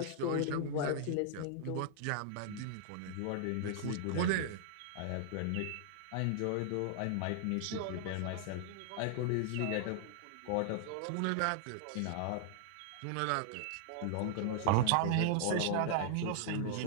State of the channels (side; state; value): both; different; correlation -0.01